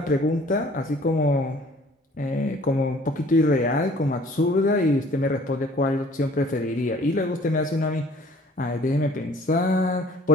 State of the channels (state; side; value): normal; both; correlation 0.54